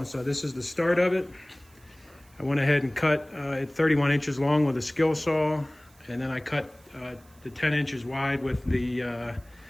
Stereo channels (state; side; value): noise; right; hiss, 29 dB below the sound